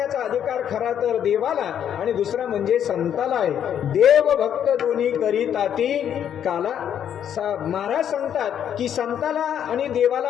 अधिकार खरा तर देवाला आणि दुसरा म्हणजे संताला आहे. देव भक्त दोन्ही करीताती काला. महाराज सांगतात की संताला आणि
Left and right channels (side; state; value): right; quieter; 9.3 dB